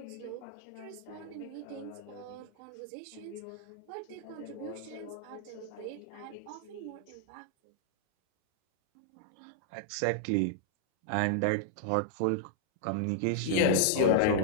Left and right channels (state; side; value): different; both; correlation -0.01